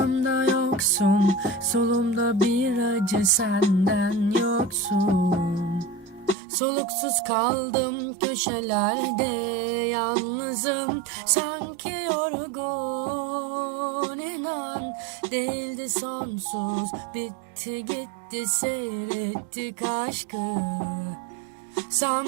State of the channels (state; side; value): drops out; left; at 6.4 s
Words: yoksun. Solumda bir acı, senden yoksun. Soluksuz kaldım köşelerde, yalnızım sanki yorgun. İnan değildi sonsuz, bitti gitti, seyrettik aşkı.